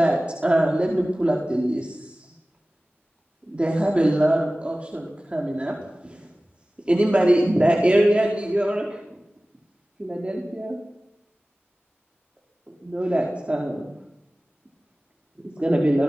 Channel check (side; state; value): both; normal; correlation 0.97